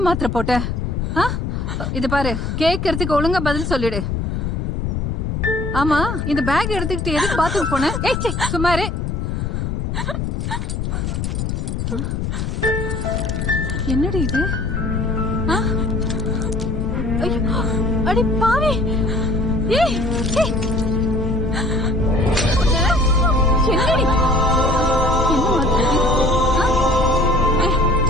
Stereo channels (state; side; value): noise; left; rumble, 2 dB below the sound